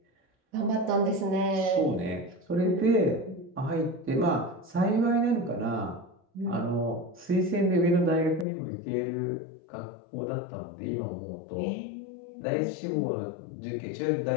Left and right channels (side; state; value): right; drops out; at 8.5 s